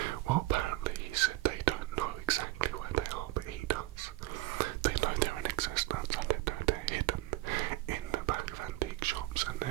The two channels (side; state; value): left; quieter; 18.4 dB